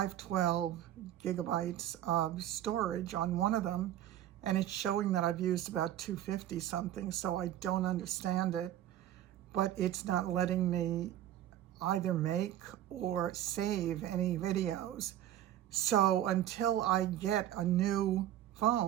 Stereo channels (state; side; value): quieter; left; 12.3 dB